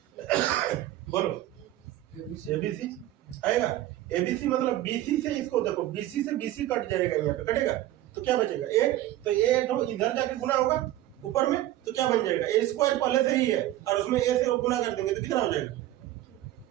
बोलो। ABC आएगा, ABC मतलब BC से, इसको देखो BC से BC कट जाएगा, यहाँ पे कटेगा तो क्या बचेगा A, तो A तो इधर जाके गुना होगा ऊपर में, तो क्या बन जाएगा, A स्क्वायर पहले से ही है और उसमें A से गुना कर देंगे तो कितना हो जाएगा,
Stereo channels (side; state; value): left; quieter; 14.4 dB